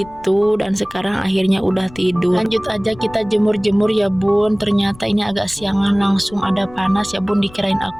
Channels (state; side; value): noise; left; rumble, 21 dB below the sound